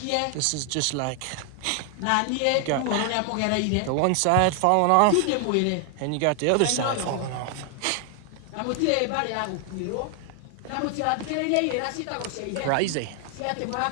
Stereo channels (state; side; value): different; both; correlation 0.00